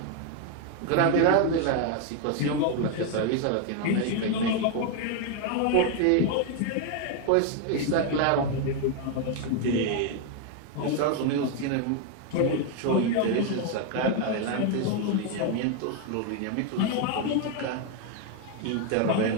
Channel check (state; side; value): different; both; correlation 0.01